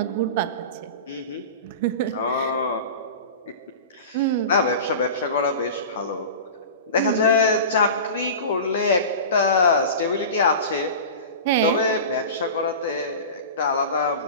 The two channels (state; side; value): inverted; both; correlation -0.32